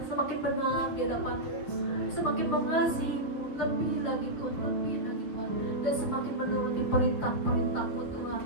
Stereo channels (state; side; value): late; right; 6.6 ms